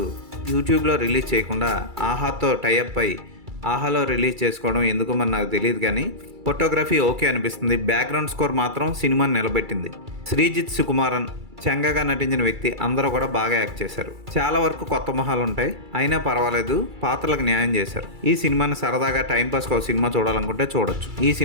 యూట్యూబ్లో రిలీజ్ చేయకుండా ఆహాతో టైఅప్ అయి ఆహాలో రిలీజ్ చేసుకోవడం ఎందుకు మరి నాకు తెలియదు, కానీ ఫోటోగ్రఫీ ఓకే అనిపిస్తుంది. బ్యాక్గ్రౌండ్ స్కోర్ మాత్రం సినిమాని నిలబెట్టింది. శ్రీజిత్ సుకుమారన్ చెంగగా నటించిన వ్యక్తి అందరూ కూడా బాగా యాక్ట్ చేశారు. చాలా వరకు కొత్త మొహాలు ఉంటాయి, అయినా పర్వాలేదు, పాత్రలకు న్యాయం చేశారు. ఈ సినిమాని సరదాగా టైంపాస్కి ఒక సినిమా చూడాలనుకుంటే చూడొచ్చు. ఈ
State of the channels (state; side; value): late; left; 2.3 ms